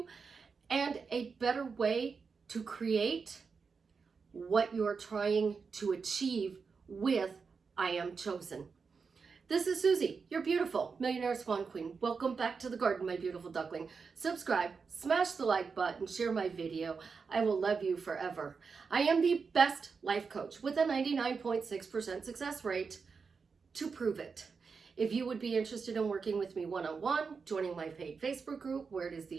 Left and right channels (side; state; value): left; quieter; 5.2 dB